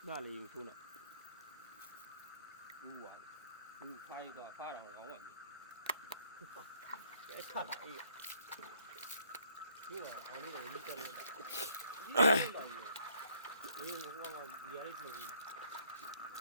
နားလေးကိုထိုးလိုက်ဘူးပါဘူးဖိုင်တော့ဖားတော့ကောင်းပါပြီအဲ့ဆက်တာအေးဘူးအောင်အောင်လေးကိုလိကျလို့တာဒီဟိုကဒီရိုက်လို့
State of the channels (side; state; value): both; inverted; correlation -0.65